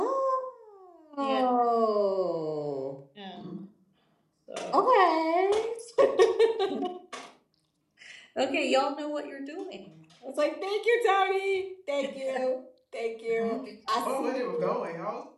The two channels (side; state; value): both; identical; correlation 1.00